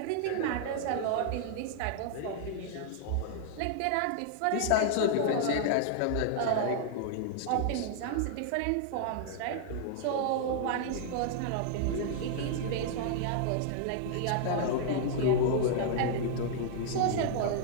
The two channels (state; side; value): different; both; correlation -0.01